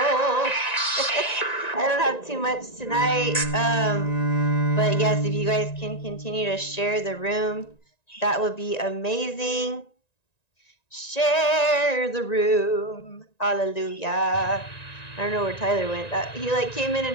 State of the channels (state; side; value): late; right; 1.9 ms